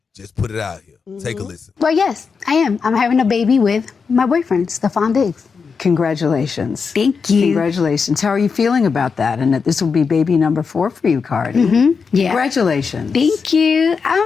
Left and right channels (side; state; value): right; quieter; 5.5 dB